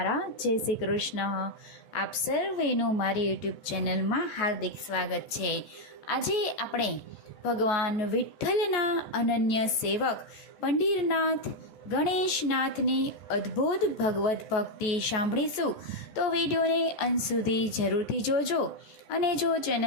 જય શ્રી કૃષ્ણ. આપ સર્વેનું મારી યુટ્યુબ ચેનલમાં હાર્દિક સ્વાગત છે. આજે આપણે ભગવાન વિઠ્ઠલના અનન્ય સેવક પંઢરીનાથ ગણેશનાથની અદ્ભુત ભગવદ્ ભક્તિ સાંભળીશું. તો વિડીયોને અંત સુધી જરૂરથી જોજો. અને જો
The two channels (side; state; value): right; late; 14 ms